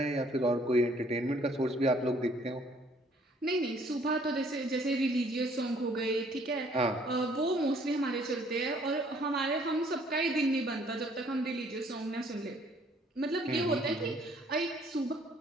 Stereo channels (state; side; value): normal; both; correlation 0.61